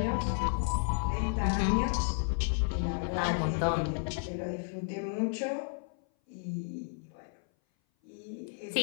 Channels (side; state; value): right; silent; 56 dB below the other